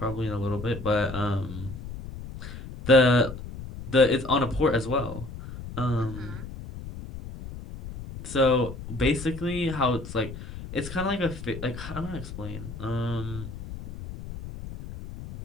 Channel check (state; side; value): noise; left; rumble, 11 dB below the sound